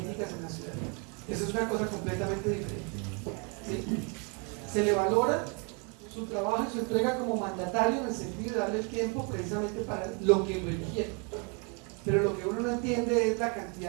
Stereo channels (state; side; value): quieter; left; 35.0 dB